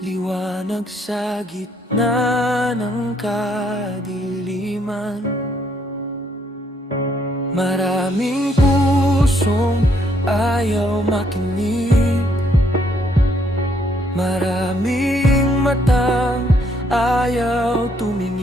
sa gitna ng kadiliman. Maraming pusong ayaw makinig, maraming matang ayaw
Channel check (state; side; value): normal; both; correlation 0.70